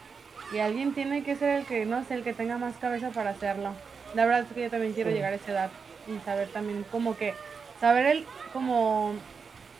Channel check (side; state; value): left; quieter; 5.5 dB